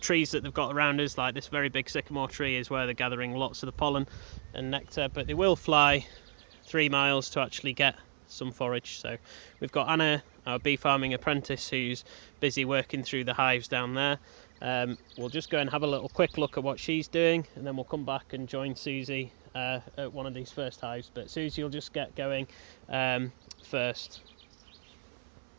trees that they've got around us, like this very big sycamore tree, is where they're gathering lots of the pollen and nectar, but they will fly 3 miles to actually get some forage. So we've got Anna, our bee farming apprentice, who's busy working through the hives down there. We'll just go and have a little quick look at what she's doing, and then we'll come back and join Susie at one of these first hives. But Susie will just get going first.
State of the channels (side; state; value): left; silent; 55 dB below the other